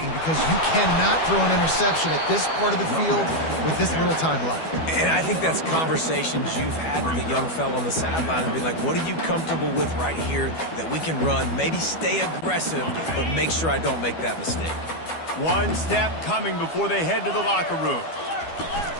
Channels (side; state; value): right; late; 12 ms